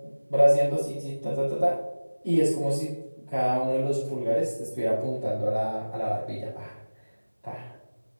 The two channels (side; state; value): both; inverted; correlation -1.00